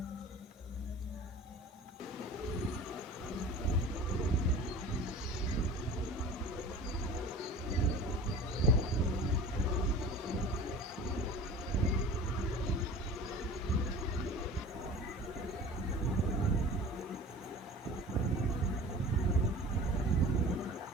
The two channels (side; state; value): both; normal; correlation 0.39